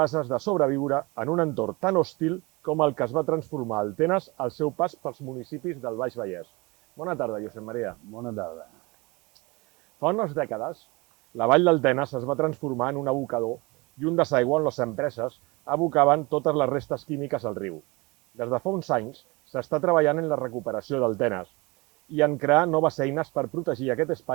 de sobreviure en un entorn tan hostil com el que es va transformar el Tenes al seu pas pels municipis del Baix Vallès. Bona tarda, Josep Maria. Bona tarda. Fa unes dècades, la vall del Tenes es va transformar en un abocador i un desaigüe on les empreses abocaven totes les restes químiques al riu. Des de fa uns anys s'està treballant en la recuperació del Tenes i en crear noves eines per protegir aquest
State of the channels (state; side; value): quieter; left; 25.3 dB